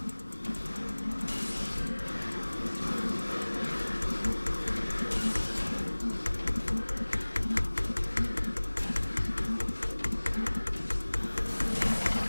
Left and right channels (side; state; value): both; inverted; correlation -1.00